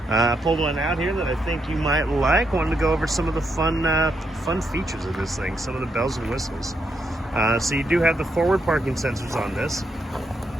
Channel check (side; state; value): both; normal; correlation 0.79